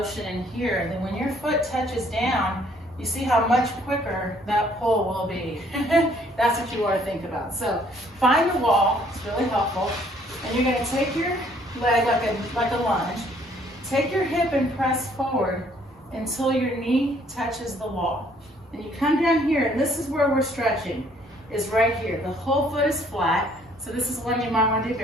in here, then when your foot touches down, you see how much quicker that pull will be. That's what you want to think about. So find the wall, it's really helpful, and you're going to take your leg like a lunge, take your hip and press forward until your knee touches the wall. And you come down here, and this is where we're stretching, is right here. The whole foot is flat, so this is one you might want to do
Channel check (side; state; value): both; normal; correlation 0.63